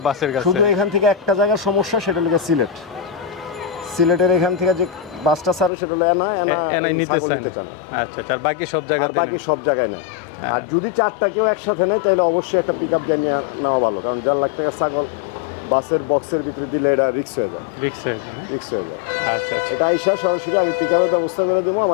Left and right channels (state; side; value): drops out; right; at 5.7 s